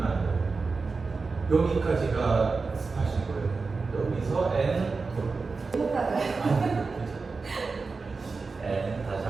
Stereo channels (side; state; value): left; quieter; 4.3 dB